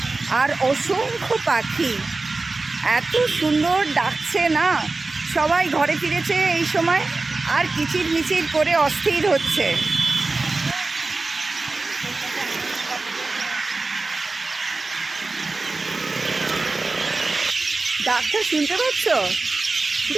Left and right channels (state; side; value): quieter; left; 3.5 dB